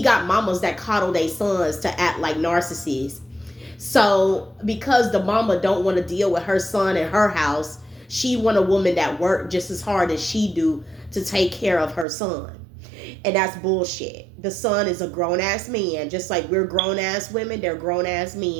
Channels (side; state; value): left; drops out; at 12.1 s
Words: got mamas that coddle their sons to act like narcissists. So because the mama don't want to deal with her son in her house, she want a woman that worked just as hard as she do to take care of her son. And that's bullshit. The son is a grown-ass man. Just like we're grown-ass women, they're grown-ass